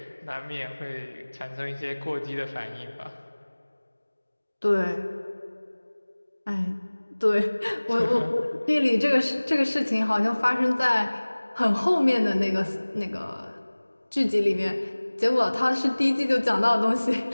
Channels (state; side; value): inverted; both; correlation -1.00